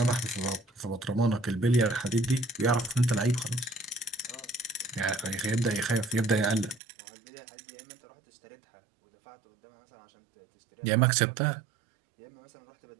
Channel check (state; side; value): drops out; left; at 6.8 s